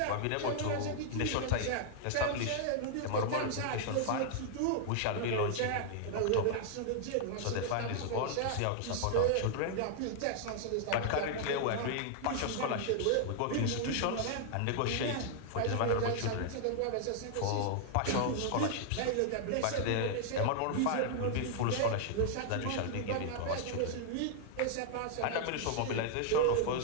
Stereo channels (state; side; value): different; both; correlation 0.00